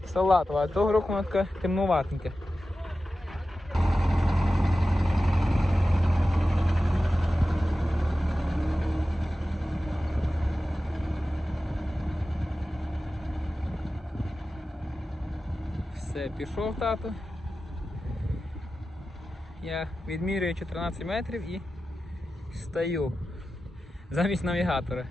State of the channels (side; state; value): both; normal; correlation 0.94